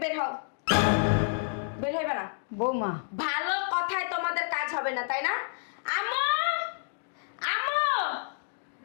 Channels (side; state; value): right; silent; digital silence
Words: বের হও। বের হইবে না। বৌমা ভালো কথায় তোমাদের কাজ হবে না, তাই না? আমো আমো,